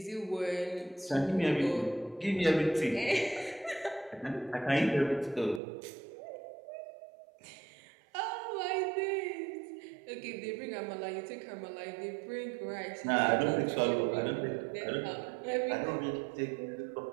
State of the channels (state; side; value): drops out; left; at 5.6 s